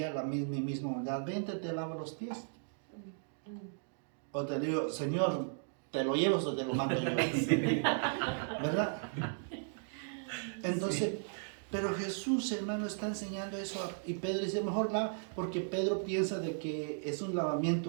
mi misma humildad? Vente, te lavo los pies. O te digo, Señor, ¿te lo llevas o te lo mando yo? Sí. ¿Verdad? Entonces, pero Jesús, hermano, está enseñando eso. Y Pedro dice, mejor lava, porque Pedro piensa de que es un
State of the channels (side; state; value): left; silent; digital silence